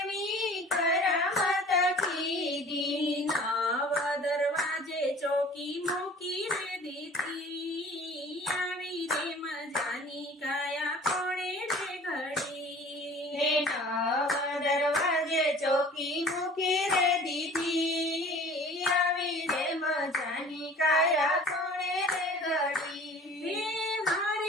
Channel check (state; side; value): normal; both; correlation 0.46